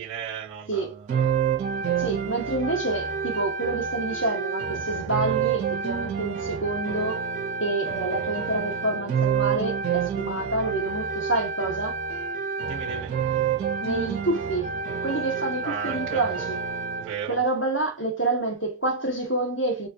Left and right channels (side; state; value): left; quieter; 4.2 dB